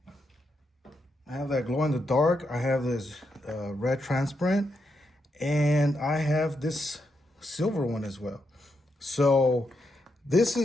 I have that glow in the dark. I have this red transparent, and I have this silver one as well. So this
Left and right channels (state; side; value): normal; both; correlation 0.82